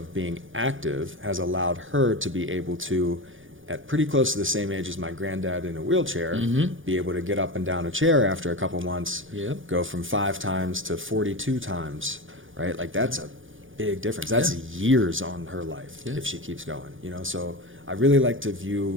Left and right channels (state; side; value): late; left; 0.58 ms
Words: being active has allowed her to be able to, at pretty close to the same age as my granddad in a wheelchair, be able to get up and down a chair after a couple months, Yep. go from 5 times to 42 times, right? Like, that's a big difference. That's Yeah. years on her life Yeah. if she keeps going, you know? So I really like to